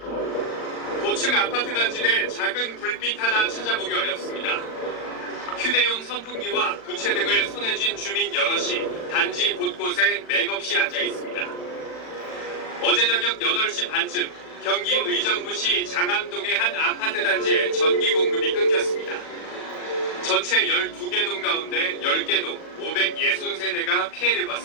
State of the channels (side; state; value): right; late; 39 ms